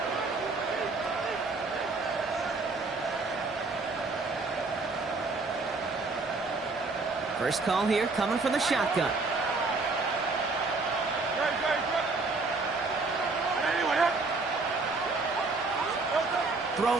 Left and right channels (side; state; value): left; quieter; 3.7 dB